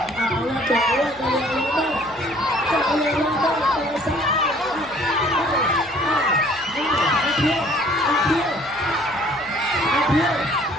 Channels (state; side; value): noise; left; hum, 26 dB below the sound